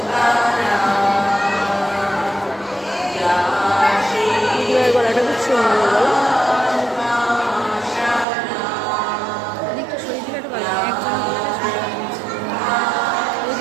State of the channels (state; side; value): drops out; left; at 8.2 s